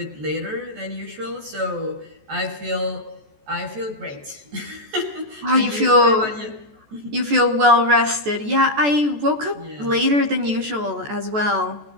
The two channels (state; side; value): late; left; 14 ms